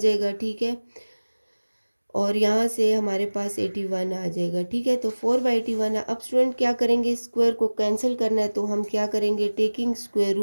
ठीक है। और यहाँ से हमारे पास 81 आ जाएगा, ठीक है। तो 4/81। अब स्टूडेंट क्या करेंगे, स्क्वायर को कैंसिल करना है तो हम क्या करेंगे, taking square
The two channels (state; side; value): inverted; both; correlation -1.00